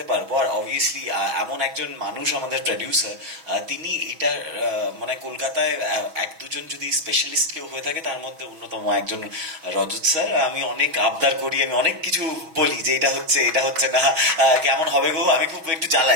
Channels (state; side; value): late; left; 6.2 ms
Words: পারবো। আর অবভিয়াসলি এমন একজন মানুষ আমাদের প্রডিউসার, তিনি এটা মানে কলকাতায় এক দুজন যদি স্পেশালিস্ট কেউ হয়ে থাকে তার মধ্যে অন্যতম একজন রজত স্যার। আমি অনেক আবদার করি, আমি অনেক কিছু বলি যে এটা হচ্ছে না, কেমন হবে গো, আমি খুব একটু